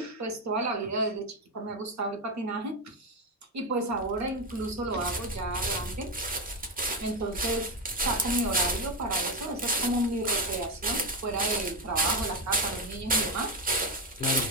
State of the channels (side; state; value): both; normal; correlation 0.10